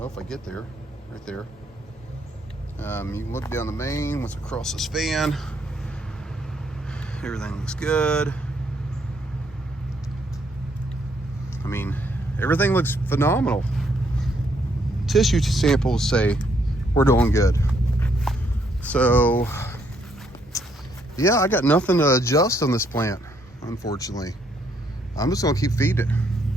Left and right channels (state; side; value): normal; both; correlation 0.71